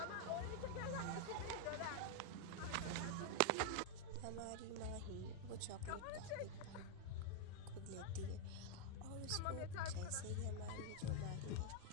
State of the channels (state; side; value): different; both; correlation 0.00